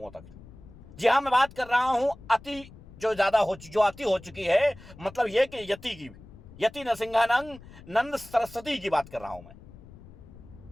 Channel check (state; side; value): noise; left; rumble, 19 dB below the sound